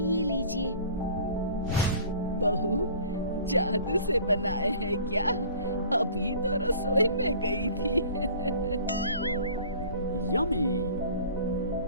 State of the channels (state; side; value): inverted; both; correlation -0.47